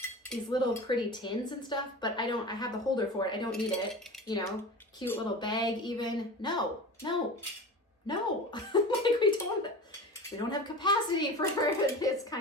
these little pretty tins and stuff, but I have the holder for it. I don't need it, you know, cute little bag even. No. Like we don't have capacity for this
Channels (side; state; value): both; normal; correlation 0.32